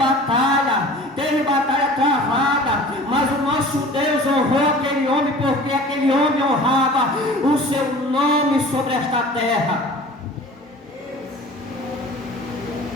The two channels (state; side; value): normal; both; correlation 0.43